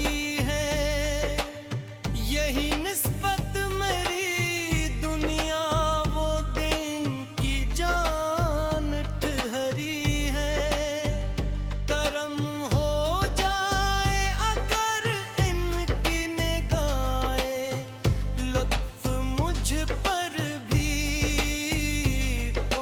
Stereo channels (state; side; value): identical; both; correlation 1.00